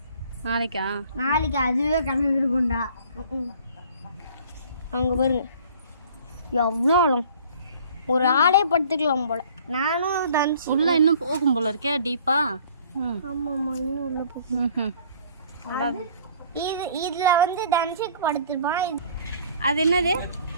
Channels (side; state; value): both; inverted; correlation -0.53